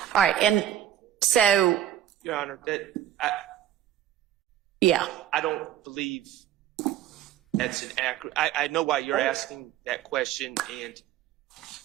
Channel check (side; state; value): left; quieter; 11.5 dB